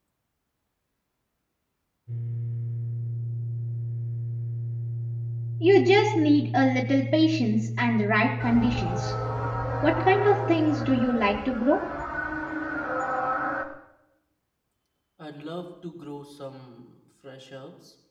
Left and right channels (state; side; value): identical; both; correlation 1.00